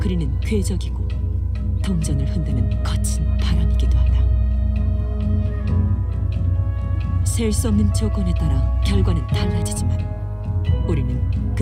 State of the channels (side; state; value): both; identical; correlation 1.00